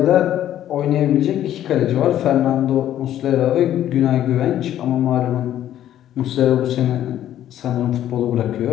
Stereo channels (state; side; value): quieter; right; 11.8 dB